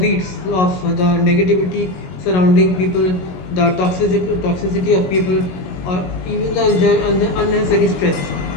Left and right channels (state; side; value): late; right; 22 ms